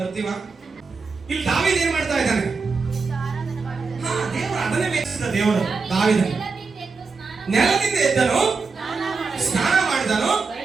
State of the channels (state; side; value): quieter; left; 4.6 dB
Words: ಬರ್ತೀವ? ಇಲ್ಲಿ ದಾವೀದ ಏನ್ ಮಾಡ್ತಾ ಇದ್ದಾನೆ? ದೇವರು ಅದನ್ನೇ ಮೆಚ್ಚಿದ. ದೇವರು ದಾವೀದ ನೆಲದಿಂದ ಎದ್ದನು, ಸ್ನಾನ ಮಾಡಿದನು,